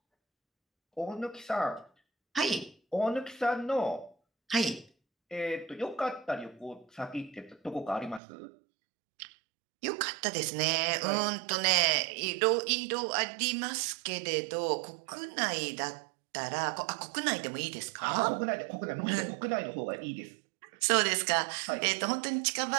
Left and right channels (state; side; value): drops out; left; at 8.2 s